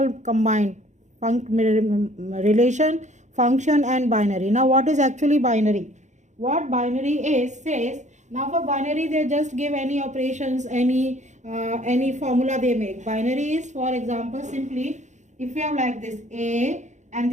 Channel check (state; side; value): late; left; 0.34 ms